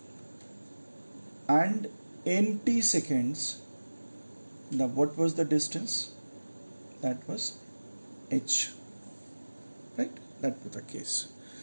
and in t seconds, what was the distance? That was H, right? That was the case.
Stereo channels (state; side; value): inverted; both; correlation -1.00